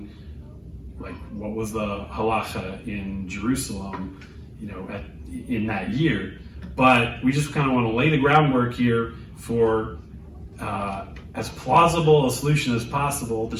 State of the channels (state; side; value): identical; both; correlation 1.00